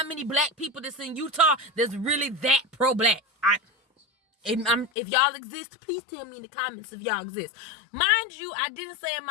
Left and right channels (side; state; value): right; drops out; at 4.9 s